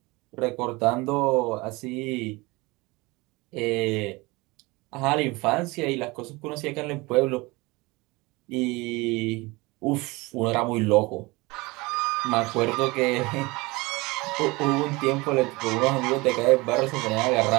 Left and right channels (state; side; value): quieter; left; 23.5 dB